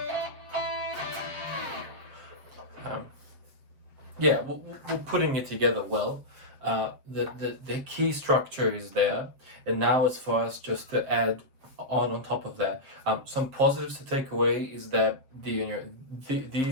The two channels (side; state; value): left; late; 7.5 ms